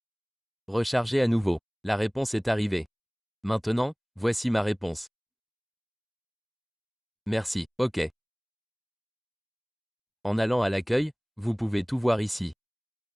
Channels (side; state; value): both; identical; correlation 1.00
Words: Rechargez à nouveau. La réponse est arrivée. Maintenant, voici ma réponse. Merci, OK. En allant à l'accueil, vous pouvez tout voir ici.